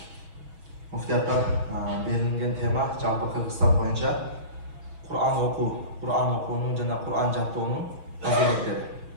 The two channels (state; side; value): late; left; 6.1 ms